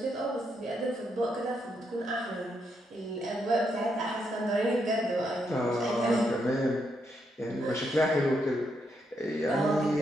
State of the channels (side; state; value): both; normal; correlation 0.79